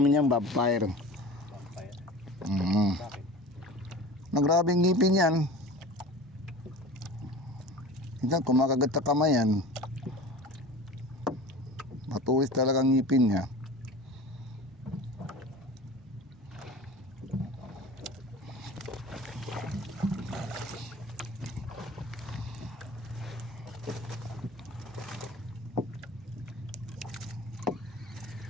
yan vampire. Bakit? Nagrabing ngipin yan. Hindi, kumakagat sa kamay yan. Matulis talagang ngipin niya.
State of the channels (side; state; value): both; normal; correlation 0.37